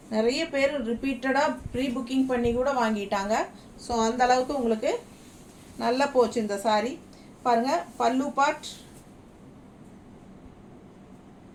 நிறைய பேர் ரிப்பீட்டடாக ப்ரீ புக்கிங் பண்ணி கூட வாங்கிட்டாங்க. ஸோ அந்த அளவுக்கு உங்களுக்கு நல்லா போச்சு இந்த சாரீ. பாருங்கள், பல்லு பார்ட்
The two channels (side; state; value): both; identical; correlation 1.00